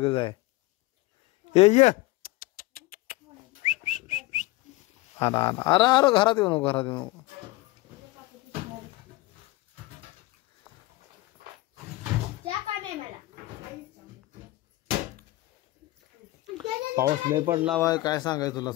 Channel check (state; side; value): quieter; right; 19.4 dB